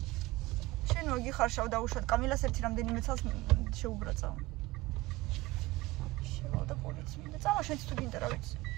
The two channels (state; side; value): quieter; left; 19.6 dB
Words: შენ მოგიხარშავ დაუშვათ კამილას ერთი რამდენიმე წელს შეუბრაწავ და პოლიცია მინდა წავა შენც თუ გინდა რა ვიცი